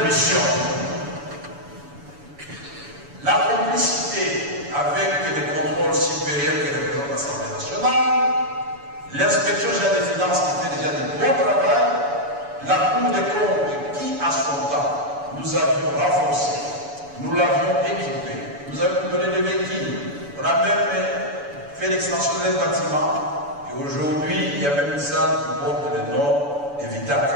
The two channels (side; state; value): left; late; 7.0 ms